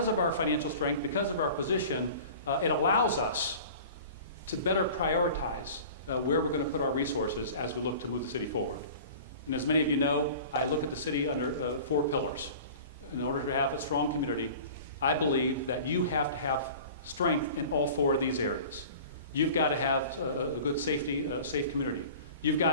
of our financial strength, because of our position, it allows us to better prioritize where we're going to put our resources as we look to move the city forward. And as many of you know, I look at the city under 4 pillars. In order to have a strong community, I believe that you have to have strength in all 4 of these areas. You've got to have a good safety, safe community. You've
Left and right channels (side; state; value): both; inverted; correlation -0.41